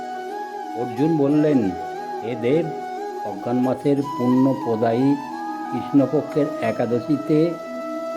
অর্জুন বললেন, হে দেব, অজ্ঞান মাসের পুণ্য প্রদায়ী কৃষ্ণপক্ষের একাদশীতে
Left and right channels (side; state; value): both; identical; correlation 1.00